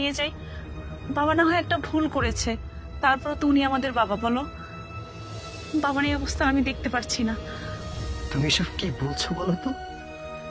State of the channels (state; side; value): identical; both; correlation 1.00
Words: যাই। বাবা না হয় একটা ভুল করেছে, তারপর তো উনি আমাদের বাবা। বলো, বাবার এই অবস্থা আমি দেখতে পারছি না। তুমি সব কি বলছো বলো তো?